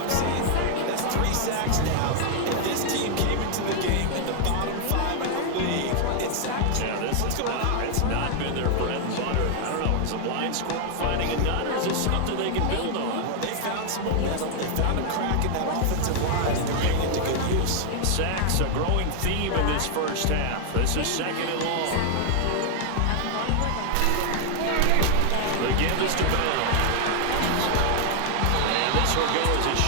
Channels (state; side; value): different; both; correlation 0.00